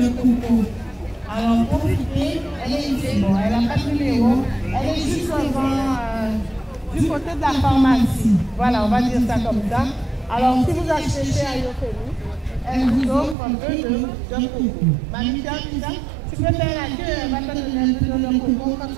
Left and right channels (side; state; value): left; drops out; at 13.4 s